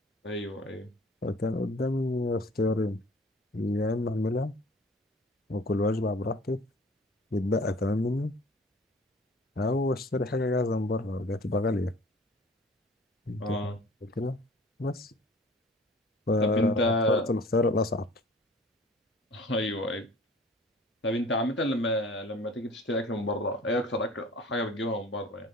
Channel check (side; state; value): both; normal; correlation 0.48